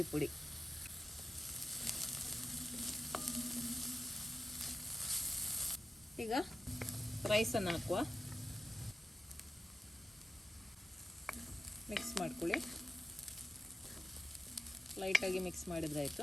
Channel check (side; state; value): both; normal; correlation 0.92